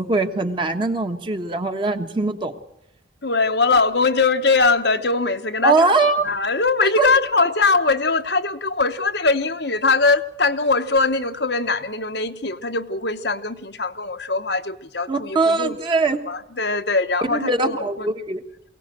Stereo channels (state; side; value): normal; both; correlation -0.05